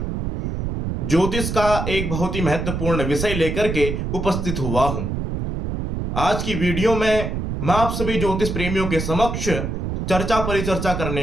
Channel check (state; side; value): noise; right; rumble, 3 dB below the sound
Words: ज्योतिष का एक बहुत ही महत्वपूर्ण विषय लेकर के उपस्थित हुआ हूं। आज की वीडियो में मैं आप सभी ज्योतिष प्रेमियों के समक्ष चर्चा परिचर्चा